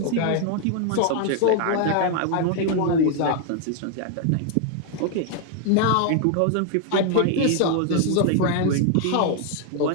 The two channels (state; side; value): different; both; correlation 0.00